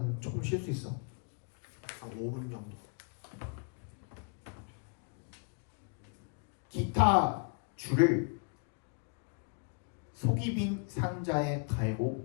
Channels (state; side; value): quieter; right; 37.5 dB